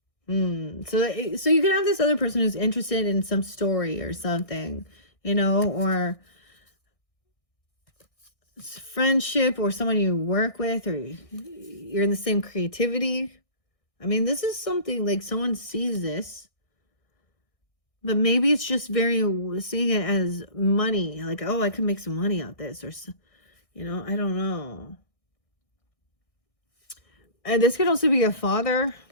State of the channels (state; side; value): late; right; 1.6 ms